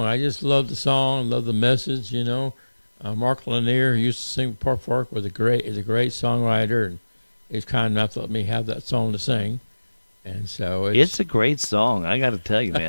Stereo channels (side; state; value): both; inverted; correlation -1.00